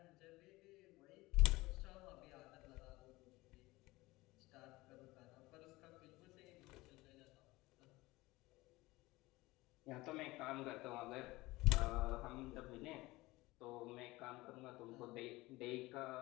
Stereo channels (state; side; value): quieter; right; 20.3 dB